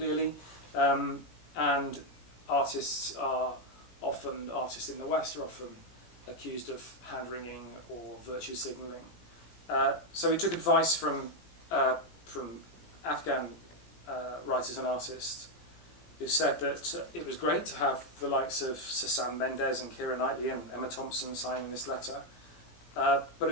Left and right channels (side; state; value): right; late; 17 ms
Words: and artists in the West are often accused of hand-wringing or virtue signalling. So we took advice from Afghan writers and artists who said that it was great to have the likes of Sam Mendes and Keira Knightley and Emma Thompson signing this letter, but it